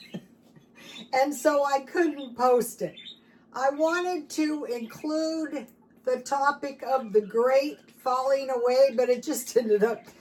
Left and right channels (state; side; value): identical; both; correlation 1.00